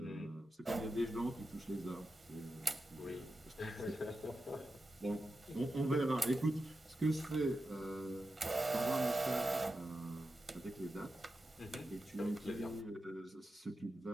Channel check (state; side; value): normal; both; correlation 0.90